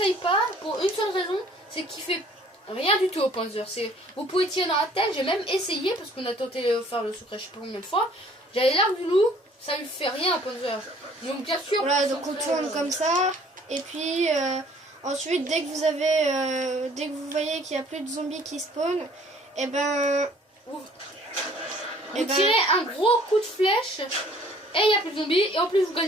pas pour une seule raison, c'est qu'il fait rien du tout au panzer. Vous pouvez tirer dans la tête, j'ai même essayé parce qu'on a tenté de faire le secret je sais pas combien de fois. J'avais l'arc du loup, ça lui fait rien au panzer. Donc bien sûr. Voilà, donc on tourne comme ça. Et puis ensuite, dès que vous voyez qu'il n'y a plus de zombies qui spawnent, et ben vous tirez un gros coup de flèche et il n'y a plus de zombies et en plus vous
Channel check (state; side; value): normal; both; correlation 0.56